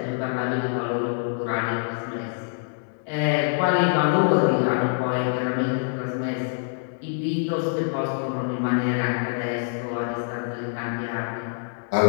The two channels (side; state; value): right; silent; digital silence